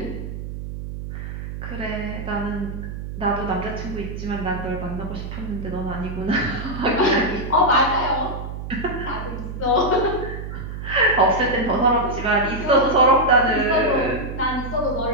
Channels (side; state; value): right; noise; hum, 8 dB below the sound